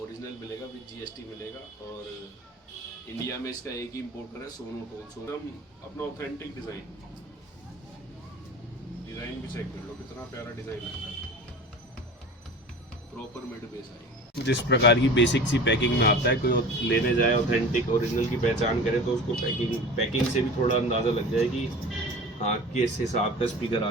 ओरिजिनल मिलेगा विद GST मिलेगा। और इंडिया में इसका एक ही इम्पोर्टर है, सोनोटोन। अपना ऑथेंटिक डिज़ाइन भी चेक कर लो, कितना प्यारा डिज़ाइन लगता है। प्रॉपर मिड बेस आएगी। जिस प्रकार की बेसिक सी पैकिंग में आता है, कोई लेने जाए ऑथेंटिक ओरिजिनल की पहचान करे तो उसको पैकिंग से भी थोड़ा अंदाज़ा लग जाए कि हाँ किस हिसाब का स्पीकर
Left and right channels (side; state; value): both; normal; correlation 0.37